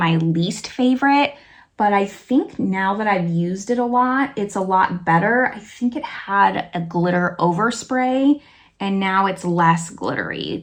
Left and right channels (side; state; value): both; identical; correlation 1.00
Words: least favorite, but I think now that I've used it a lot, it's a lot better. I think it had a glitter overspray and now it's less glittery.